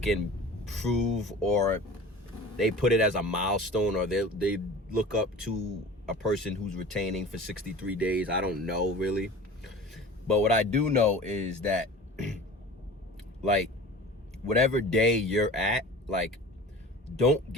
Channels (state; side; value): normal; both; correlation 0.39